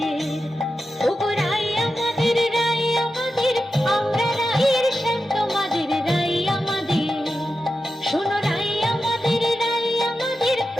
ওগো রাই আমাদের, রাই আমাদের, আমরা রায়ের শান্ত মাদের রাই আমাদের। শোনো রাই আমাদের, রাই আমাদের,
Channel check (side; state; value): both; normal; correlation 0.90